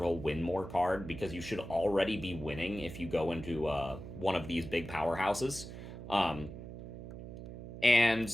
a win more card, because you should already be winning if you go into one of these big powerhouses.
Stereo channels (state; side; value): noise; right; hum, 11 dB below the sound